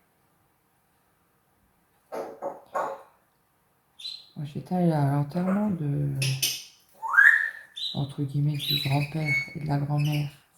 Moi j'étais allée à l'enterrement de... entre guillemets du grand-père et de la grand-mère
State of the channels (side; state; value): both; identical; correlation 1.00